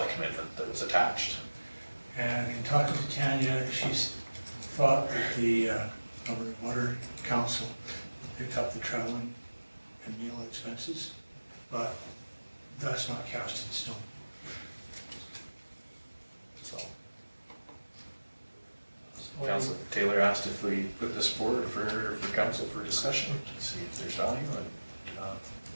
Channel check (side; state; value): both; inverted; correlation -1.00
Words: commitment that was attached. And in talking to Tanya, she's thought that the Alberta Water Council picked up the traveling and meal expenses, but that's not cast in stone. So Councillor Taylor asked if we put this forward for council for discussion, to see if there's value